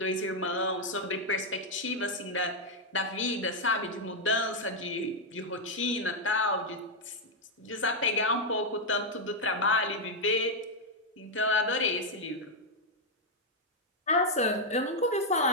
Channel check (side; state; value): both; normal; correlation -0.01